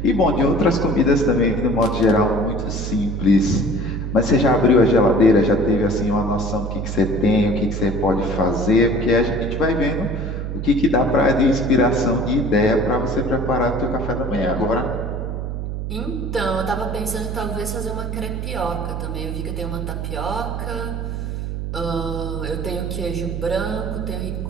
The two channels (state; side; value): noise; right; hum, 4 dB below the sound